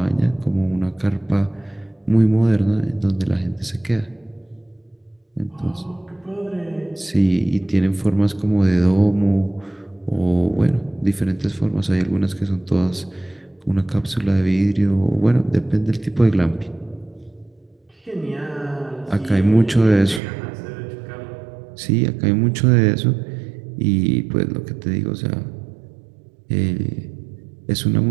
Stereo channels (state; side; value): drops out; left; at 20.2 s